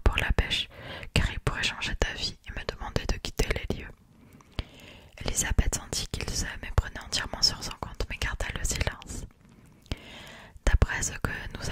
Elisabeth sentit qu'il se méprenait entièrement sur son compte, mais garda le silence. D'après ce que nous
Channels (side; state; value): both; identical; correlation 1.00